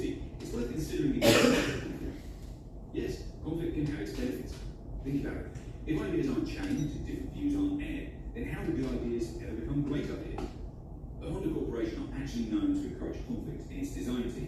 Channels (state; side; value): identical; both; correlation 1.00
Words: it's worth considering the benefits of conflict. Yes, conflict can have its benefits. Think about it. If ideas aren't challenged and different views aren't aired, then how do good ideas ever become great ideas? The Honda Corporation are actually known to encourage conflict in its design